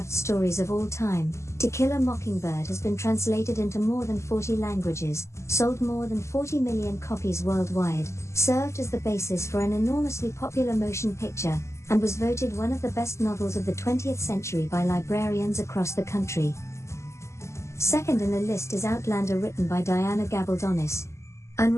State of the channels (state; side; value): late; right; 0.13 ms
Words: stories of all time, To Kill a Mockingbird has been translated into more than 40 languages, sold more than 40 million copies worldwide, served as the basis for an enormously popular motion picture, and was voted one of the best novels of the 20th century by librarians across the country. Second in the list is Outlander, written by Diana Gabaldonis.